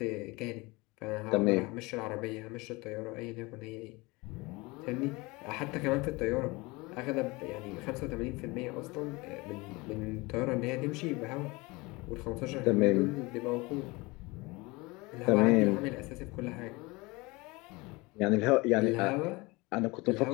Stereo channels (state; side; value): quieter; right; 24.1 dB